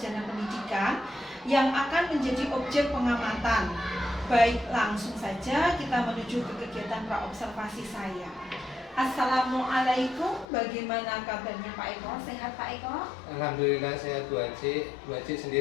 Pendidikan, yang akan menjadi objek pengamatan. Baik, langsung saja kita menuju ke kegiatan praobservasi saya. Assalamualaikum, bagaimana kabarnya Pak Eko? Sehat Pak Eko? Alhamdulillah sehat Bu Aji. Bu Aji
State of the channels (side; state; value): right; drops out; at 10.5 s